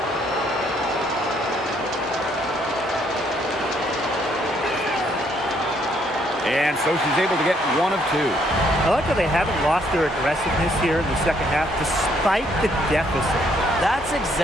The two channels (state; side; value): normal; both; correlation 0.69